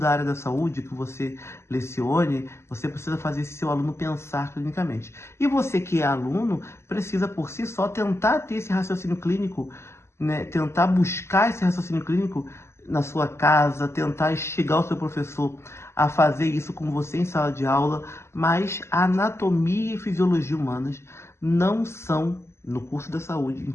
área da saúde que você lecione. Você precisa fazer esse seu aluno pensar clinicamente. E você que é aluno precisa por si só tentar ter esse raciocínio clínico, né? Tentar buscar esse raciocínio clínico na sua casa, tentar instigar o seu professor a fazer isso com você em sala de aula, mas a anatomia e fisiologia humanas não são no curso da saúde, em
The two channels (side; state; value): right; late; 0.13 ms